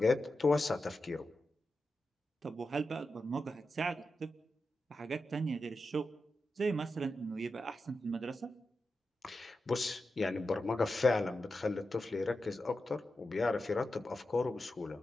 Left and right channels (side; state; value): both; normal; correlation 0.90